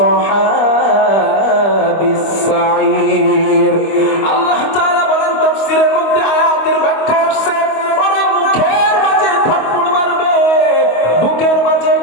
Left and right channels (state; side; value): late; right; 25 ms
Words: আসহাবিস সাঈর। আল্লাহ তাআলা বলেন তাফসীরের মধ্যে আয়াতের ব্যাখ্যা আসছে, ওরা মুখের মাঝে থাপ্পড় মারবে, বুকের মাঝে,